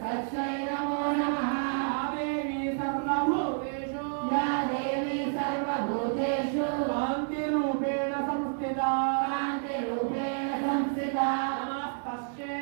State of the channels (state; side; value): silent; left; digital silence